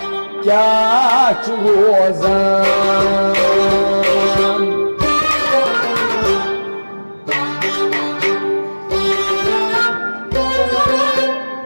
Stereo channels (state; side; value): inverted; both; correlation -1.00